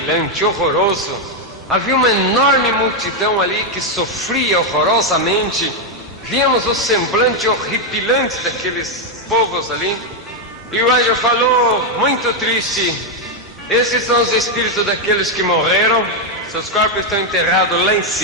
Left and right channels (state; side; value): normal; both; correlation 0.02